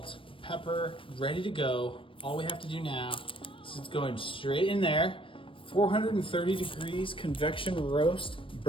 pepper, ready to go. All we have to do now is it's going straight in there. 430 degrees convection roast,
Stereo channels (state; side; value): late; right; 0.25 ms